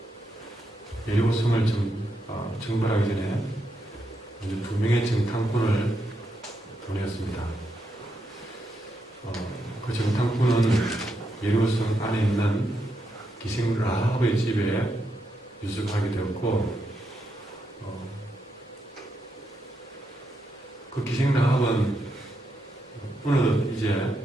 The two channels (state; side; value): normal; both; correlation 0.82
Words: 여리고성을 정벌하기 전에 먼저 2명의 정탐꾼을 보냈습니다. 그 정탐꾼은 여리고성 안에 있는 기생 라합의 집에 유숙하게 되었고, 그 기생 라합은 어느덧